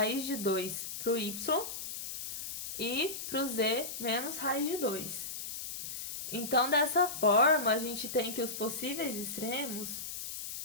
de 2 para o y e para o z menos raiz de 2. Então, dessa forma, a gente tem que os possíveis extremos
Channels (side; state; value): left; noise; hiss, 7 dB below the sound